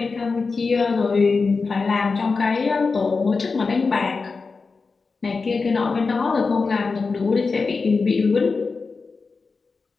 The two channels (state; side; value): quieter; right; 4.4 dB